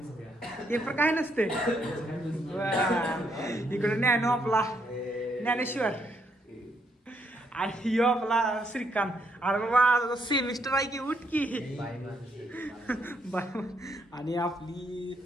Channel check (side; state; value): both; normal; correlation 0.75